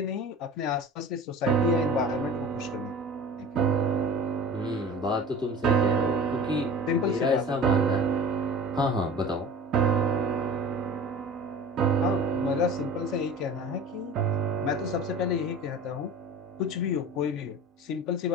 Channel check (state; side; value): normal; both; correlation 0.39